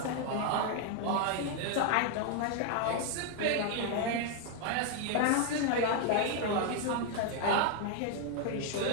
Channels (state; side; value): different; both; correlation 0.00